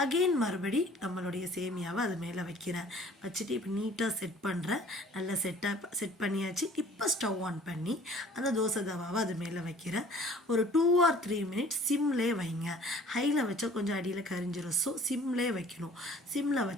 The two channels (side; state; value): both; normal; correlation 0.51